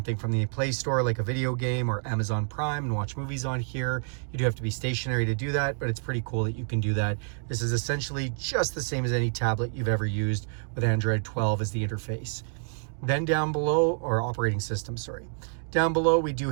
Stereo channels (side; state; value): left; silent; 59 dB below the other